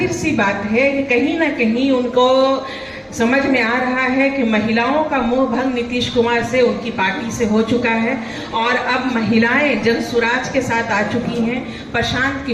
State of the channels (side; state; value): both; identical; correlation 1.00